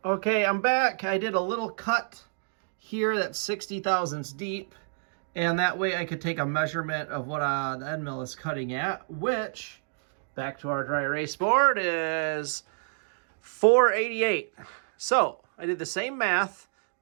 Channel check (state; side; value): silent; left; digital silence